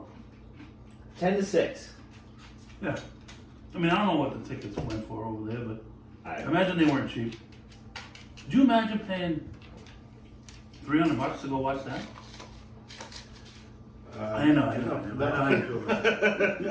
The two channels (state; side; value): identical; both; correlation 1.00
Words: 10-6. Yeah. I mean, I don't know what the tickets went for over there, but I I imagine they weren't cheap. Could you imagine paying $300 to go watch that? I know. I know,